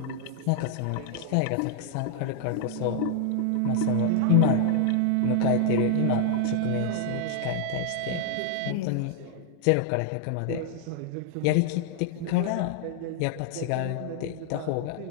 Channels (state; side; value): different; both; correlation 0.00